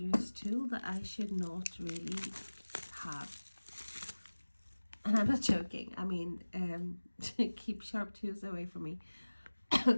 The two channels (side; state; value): both; inverted; correlation -1.00